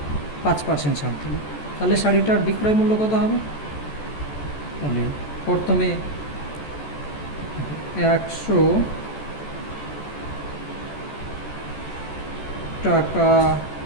5% ছাড় দিল, তাহলে শাড়িটার বিক্রয় মূল্য কত হবে? তাহলে প্রথমে 100 টাকা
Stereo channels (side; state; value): right; late; 14 ms